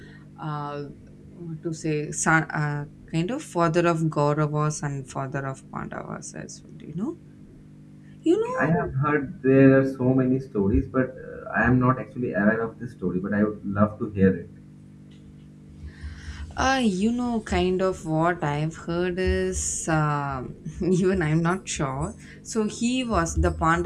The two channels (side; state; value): both; identical; correlation 1.00